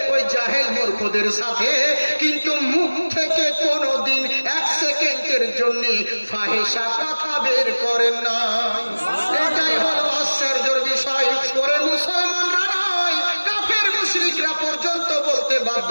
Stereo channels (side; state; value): both; inverted; correlation -1.00